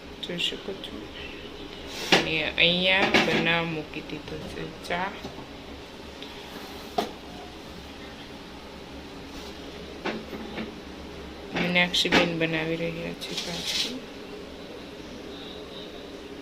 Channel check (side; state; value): both; identical; correlation 1.00